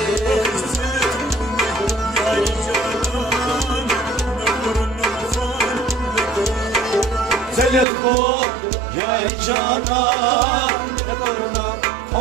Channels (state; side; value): drops out; left; at 7.9 s